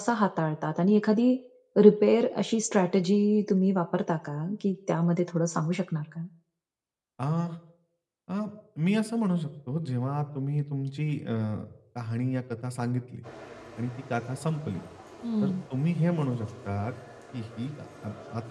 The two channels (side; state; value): both; identical; correlation 1.00